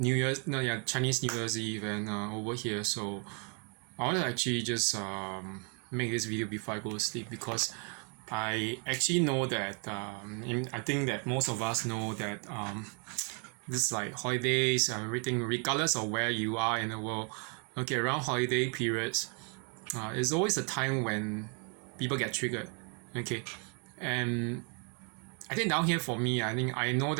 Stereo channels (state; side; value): quieter; left; 38.3 dB